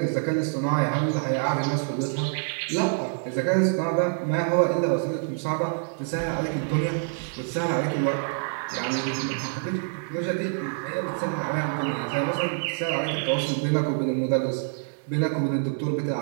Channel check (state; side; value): silent; left; 61 dB below the other